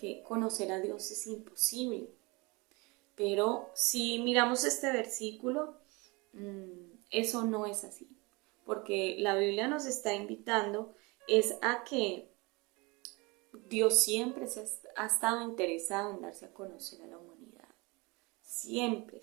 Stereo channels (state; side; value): quieter; left; 26.2 dB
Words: conocer a Dios es imposible. Pero si miramos este versículo, eso no es así, porque la Biblia nos está invitando es a que Dios siempre ha estado interesado en darse a conocer a la humanidad, siempre,